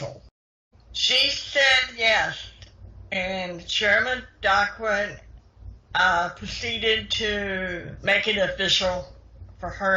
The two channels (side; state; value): both; identical; correlation 1.00